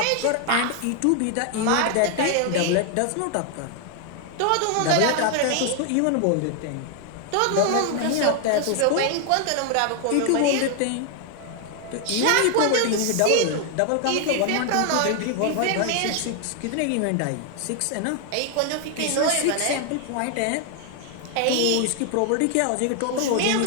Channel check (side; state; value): both; different; correlation 0.00